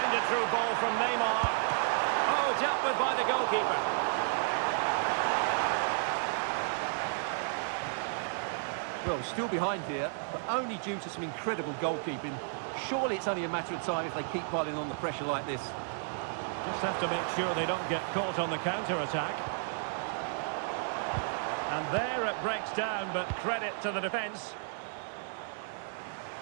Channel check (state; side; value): silent; left; digital silence